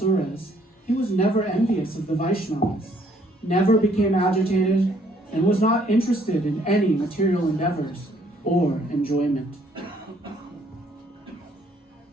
he was never envious of the Vaishnavas, never became agitated, and was not interested in any material endeavors or enjoyment.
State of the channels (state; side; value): normal; both; correlation 0.65